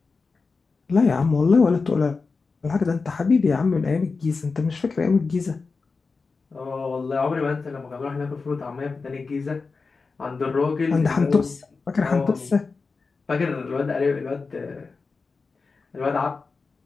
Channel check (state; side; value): quieter; right; 4.4 dB